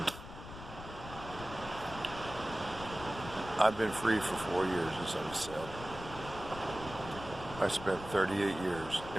I've been free for 4 years, as I've said. I spent 38 years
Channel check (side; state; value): left; noise; rumble, 12 dB below the sound